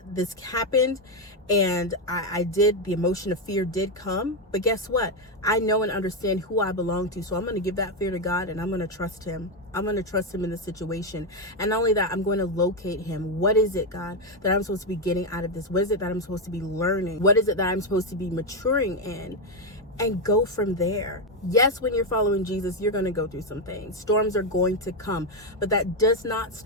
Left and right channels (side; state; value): both; normal; correlation 0.06